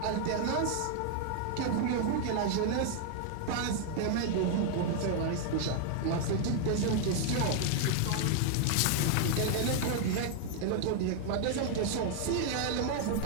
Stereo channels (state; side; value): different; both; correlation 0.00